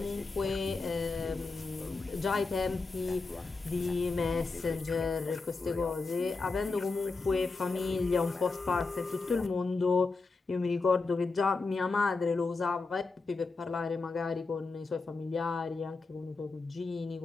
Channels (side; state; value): right; quieter; 3.9 dB